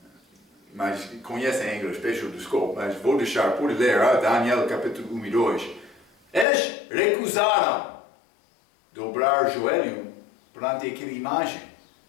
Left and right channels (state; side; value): drops out; right; at 6.5 s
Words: mas conhecem em inglês, peço desculpa, mas vou deixar por ler Daniel capítulo 1 e 2. Eles recusaram dobrar joelho perante aquela imagem.